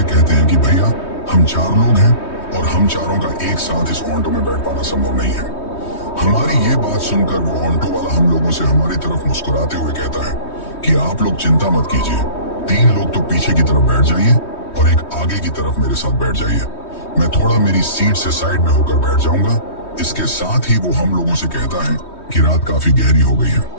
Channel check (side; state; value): right; late; 3.2 ms